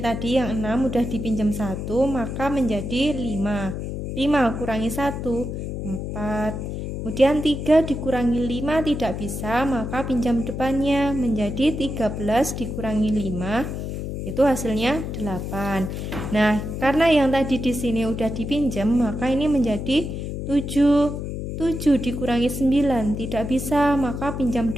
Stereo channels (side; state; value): left; noise; hum, 5 dB below the sound